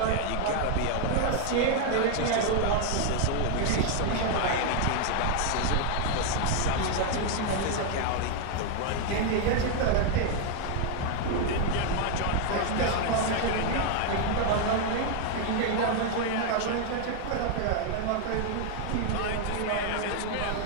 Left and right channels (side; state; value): both; different; correlation 0.00